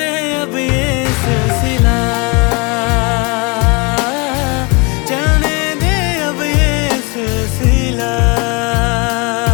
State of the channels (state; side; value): quieter; right; 29.4 dB